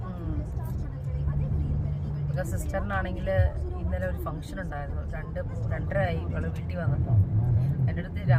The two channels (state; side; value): identical; both; correlation 1.00